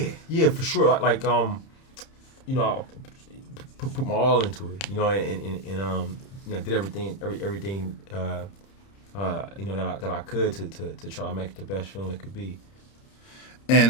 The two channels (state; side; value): late; right; 30 ms